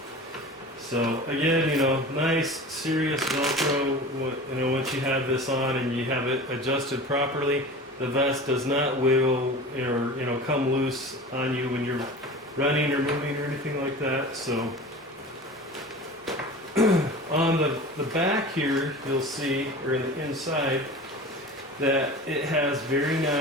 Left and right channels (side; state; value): both; normal; correlation 0.35